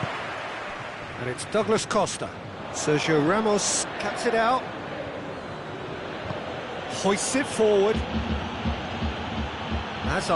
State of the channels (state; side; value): identical; both; correlation 1.00